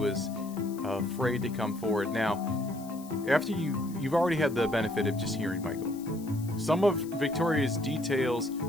afraid to come forward. Now, after you've already had the benefit of just hearing Michael. Some of Victoria's details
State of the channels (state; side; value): noise; left; hiss, 20 dB below the sound